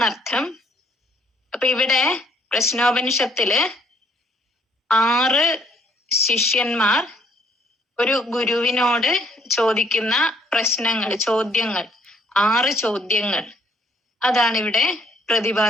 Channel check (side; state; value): both; normal; correlation 0.65